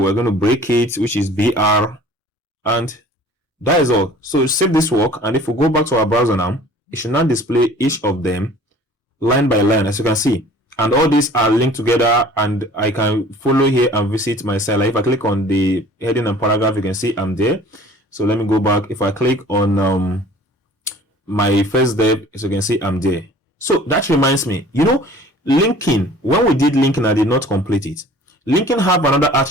we're going to break it, which is BR, and that is all. So save this work, and if we go back to our browser now, it should now display each of them line by line, as you can see. And all these are linked together, and I can follow here and visit my site. Like if I click on the heading and paragraph, you can see I'm there. So let me go back. If I click on my first dev, as you can see I'm there. So that reminds me, you know, linking, when we did linking, I did not complete it. Linking have another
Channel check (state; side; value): normal; both; correlation 0.48